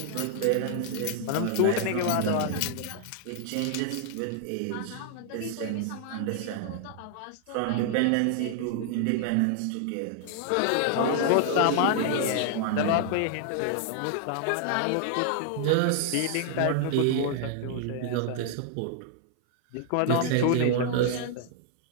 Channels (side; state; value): both; different; correlation 0.00